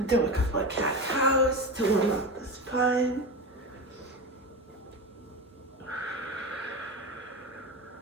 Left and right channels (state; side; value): normal; both; correlation 0.23